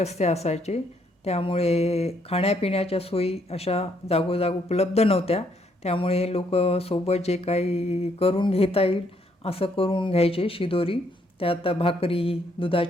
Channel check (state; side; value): normal; both; correlation 0.71